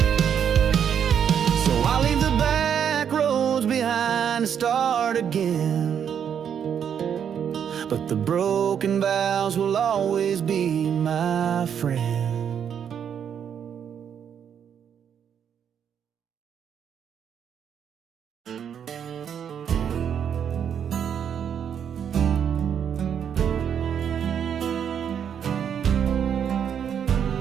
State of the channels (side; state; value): left; quieter; 8.3 dB